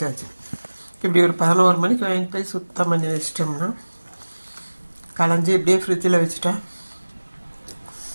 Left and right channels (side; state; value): both; inverted; correlation -1.00